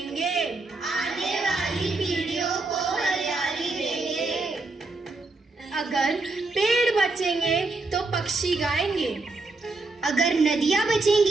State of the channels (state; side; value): quieter; left; 3.4 dB